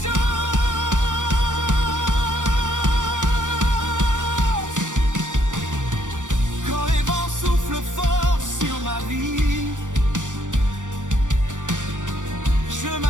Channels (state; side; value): late; left; 0.87 ms